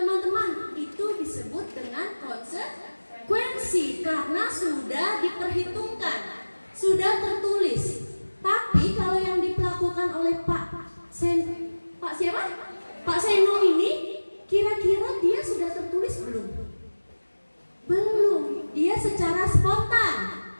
itu disebut dengan konsekuensi karena sudah diperhitungkan, sudah tertulis. Tapi kalau yang dilakukan oleh Pak siapa? Pak Seno ini, kira-kira dia sudah tertulis belum? Belum. Dia secara spontan.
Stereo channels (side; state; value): both; inverted; correlation -1.00